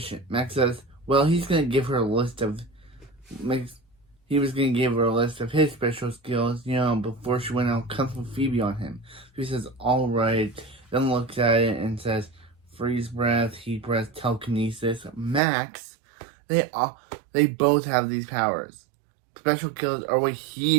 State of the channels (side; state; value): left; drops out; at 15.4 s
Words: Max says, "Well, he's gonna give her a list of he was gonna give her a list of his special skills, before she went out Kung Fu Phoebe on him." He says, "All right," then looks at it and says, "Freeze breath, heat breath, telekinesis." Max, they both have these powers. Special skills are what